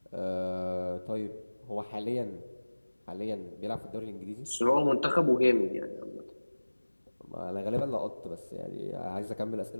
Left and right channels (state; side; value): inverted; both; correlation -1.00